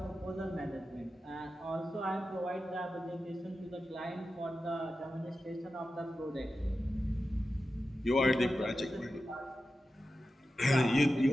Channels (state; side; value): normal; both; correlation 0.92